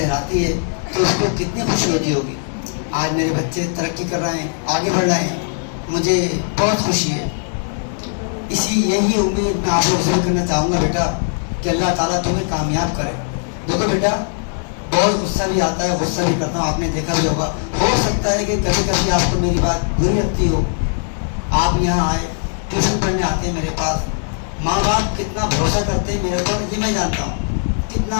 है तो उसको कितनी खुशी होती होगी। आज मेरे बच्चे तरक्की कर रहे हैं, आगे बढ़ रहे हैं, मुझे बहुत खुशी है। यही उम्मीद मैं आप लोग से करना चाहूँगा बेटा कि अल्लाह ताला तुम्हें कामयाब करे। देखो बेटा, बहुत गुस्सा भी आता है, गुस्सा भी करता हूँ, आपने देखा भी होगा। हो सकता है कि कभी कभी आपको मेरी बात बुरी लगती हो। आप यहाँ आए, ट्यूशन पढ़ने आते हैं मेरे पास, माँ बाप कितना भरोसा करते हैं मेरे ऊपर, ये मैं जानता हूँ। कितना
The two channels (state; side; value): silent; right; digital silence